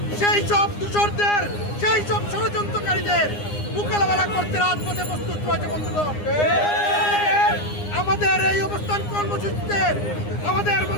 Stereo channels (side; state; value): right; late; 9.8 ms